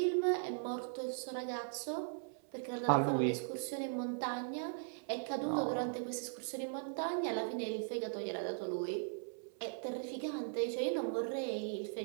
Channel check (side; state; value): left; silent; 52 dB below the other